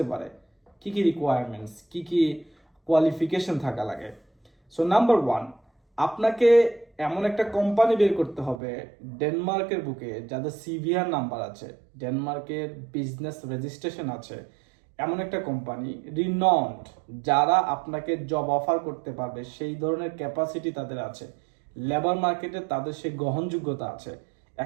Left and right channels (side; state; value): left; drops out; at 8.6 s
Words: পারে, কি কি রিকোয়ারমেন্টস, কি কি কোয়ালিফিকেশন থাকা লাগে। সো নাম্বার ওয়ান, আপনাকে এমন একটা কোম্পানি বের করতে হবে ডেনমার্কের বুকে যাদের সিভিআর নাম্বার আছে, ডেনমার্কের বিজনেস রেজিস্ট্রেশন আছে, এমন একটা কোম্পানি রিনন্ড যারা আপনাকে জব অফার করতে পারবে, সেই ধরনের ক্যাপাসিটি তাদের আছে, লেবার মার্কেটে তাদের সেই গ্রহণযোগ্যতা আছে,